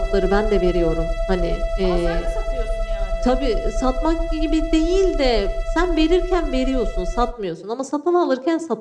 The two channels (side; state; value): both; identical; correlation 1.00